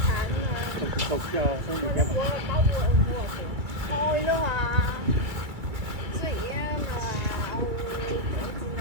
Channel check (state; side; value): late; left; 2.3 ms